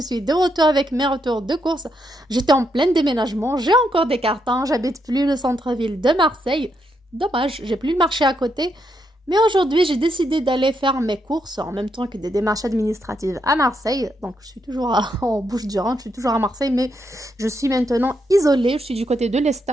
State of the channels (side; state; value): both; normal; correlation 0.79